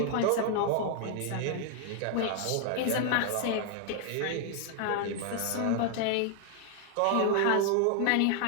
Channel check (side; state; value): both; different; correlation 0.00